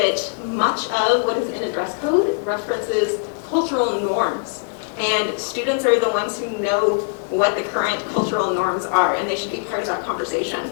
much of what is in a dress code references cultural norms, and students are the ones who know what the current cultural norms are, and they should be part of that conversation.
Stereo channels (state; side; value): silent; right; digital silence